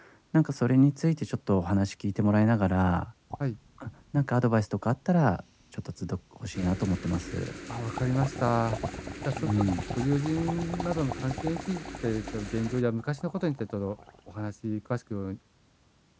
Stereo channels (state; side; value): identical; both; correlation 1.00